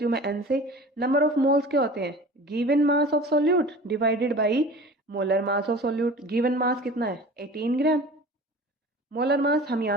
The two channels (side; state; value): both; normal; correlation 0.40